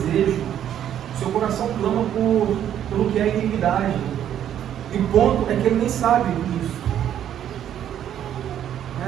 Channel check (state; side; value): quieter; left; 10.3 dB